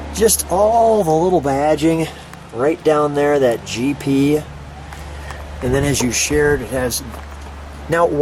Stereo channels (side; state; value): both; identical; correlation 1.00